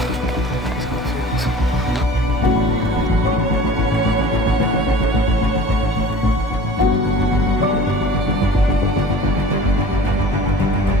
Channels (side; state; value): both; normal; correlation 0.43